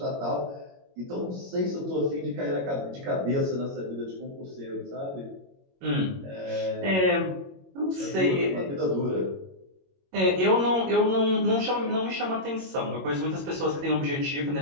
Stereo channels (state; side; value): late; left; 22 ms